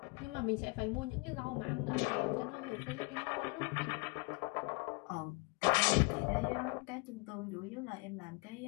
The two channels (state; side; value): quieter; right; 29.8 dB